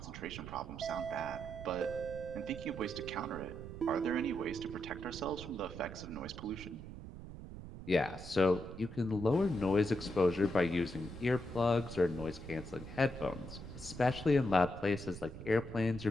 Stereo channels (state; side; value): noise; right; rumble, 11 dB below the sound